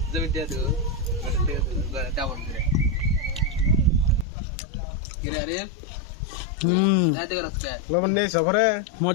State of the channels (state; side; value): drops out; right; at 4.2 s